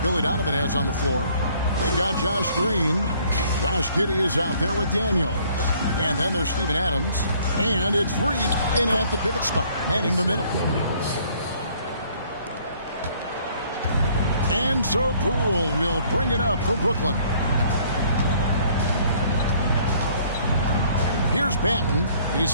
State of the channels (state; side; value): inverted; both; correlation -0.60